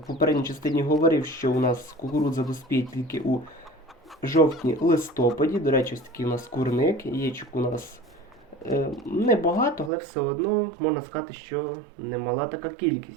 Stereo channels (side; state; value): left; drops out; at 9.9 s